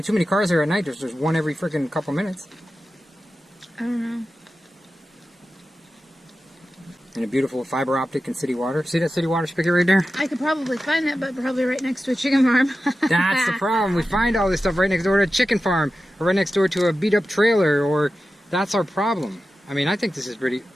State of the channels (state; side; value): normal; both; correlation 0.93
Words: too many cars there at night. There's one every freaking couple minutes. I don't know. And a beautiful fiber optic and city water. See that city water spigot right there? I could probably find that, but probably right next to a chicken farm. That's the problem. We find all this stuff right next door to a chicken farm, or right next door to a beat up trailer, or that's our problem. I mean, I think this is pretty,